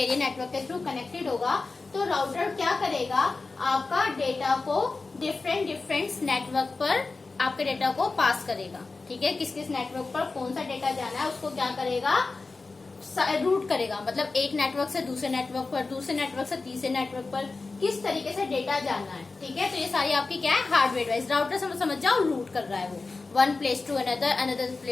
network के through connected होगा, तो router क्या करेगा? आपका data को डिफरेंट नेटवर्क पर आपके डेटा को पास करेगा। ठीक है, किस किस नेटवर्क पर कौन सा डेटा जाना है उसको क्या करेगा? रूट करेगा, मतलब एक नेटवर्क से दूसरे नेटवर्क पर, दूसरे नेटवर्क से तीसरे नेटवर्क पर किस तरीके से डेटा जाना है। ठीक है, तो ये सारी आपकी क्या है? Hardware device. राउटर समझ जाओ, रूट कर रहा है वो one place to another, another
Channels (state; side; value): quieter; right; 3.8 dB